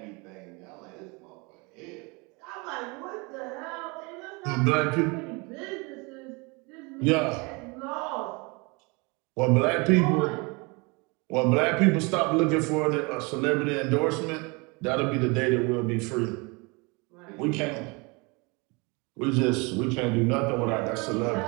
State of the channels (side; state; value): left; quieter; 28.4 dB